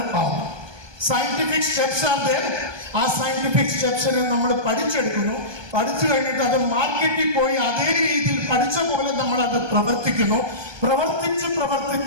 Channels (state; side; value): late; left; 1.2 ms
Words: ആവുന്നത്. Scientific steps are there. ആ സയന്റിഫിക് സ്റ്റെപ്സിനെ നമ്മൾ പഠിച്ചെടുക്കുന്നു. പഠിച്ചു കഴിഞ്ഞിട്ട് അത് മാർക്കറ്റിൽ പോയി അതേ രീതിയിൽ പഠിച്ച പോലെ നമ്മൾ അത് പ്രവർത്തിക്കുന്നു. പ്രവർത്തിച്ച്